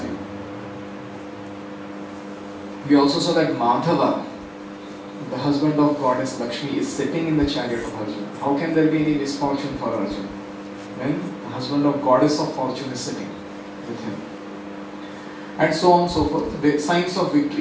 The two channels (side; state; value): both; identical; correlation 1.00